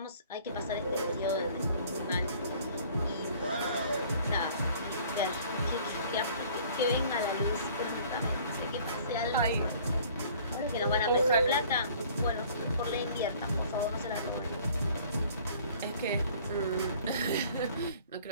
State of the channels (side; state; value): both; inverted; correlation -0.53